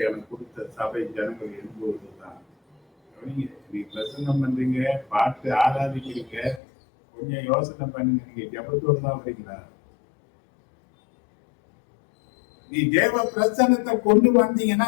எனக்கு கொடுத்த சபை ஜனங்கள் எழுதுவதுதான். நீ பிரசங்கம் பண்றீங்க, பாட்டு ஆராதிக்கிறீங்க, கொஞ்சம் யோசனை பண்ணுங்க. நீங்க ஜபத்தோடு தான் வரீங்களா? நீ தேவ பிரசன்னத்தை கொண்டு வந்தீங்கன்னா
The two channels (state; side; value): drops out; right; at 6.6 s